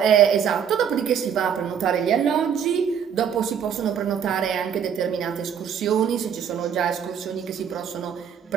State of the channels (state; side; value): quieter; left; 8.0 dB